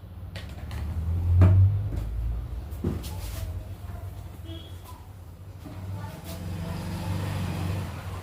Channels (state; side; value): identical; both; correlation 1.00